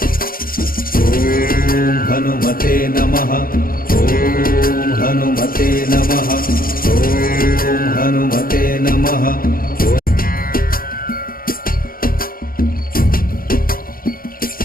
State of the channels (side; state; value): right; late; 0.42 ms